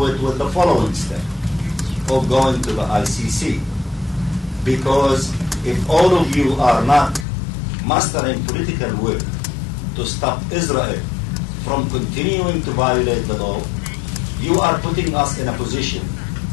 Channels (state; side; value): drops out; right; at 7.2 s